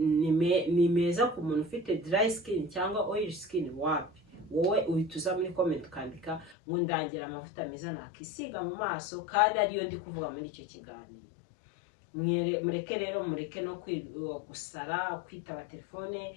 meza ku muntu ufite dry skin cyangwa oil skin. Wapi, wowe uhituza muri comment ukandika ngo ndangira amavuta meza nakisiga mu maso, kandi ariyo ndi kuvuga muri icyo kiganiro. Mureke rero, mureke no gusara, kwitaba telefone,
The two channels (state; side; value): drops out; right; at 6.6 s